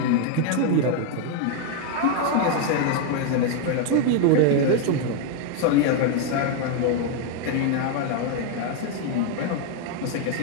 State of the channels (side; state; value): both; different; correlation 0.01